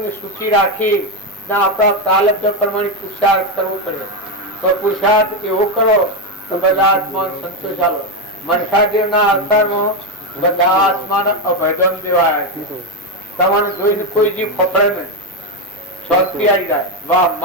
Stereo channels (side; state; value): both; normal; correlation 0.08